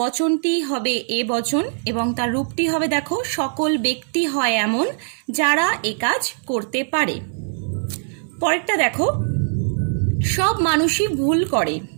হবে এ বচন এবং তার রূপটি হবে, দেখো, সকল ব্যক্তি হয় এমন যারা এ কাজ করতে পারে। পরেরটা দেখো, সব মানুষই ভুল করে।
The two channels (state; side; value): silent; left; digital silence